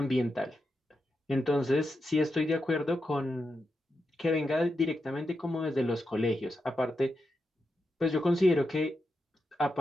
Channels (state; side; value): normal; both; correlation 0.87